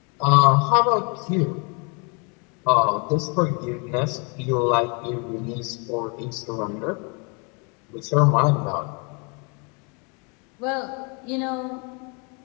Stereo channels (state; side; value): quieter; right; 33.8 dB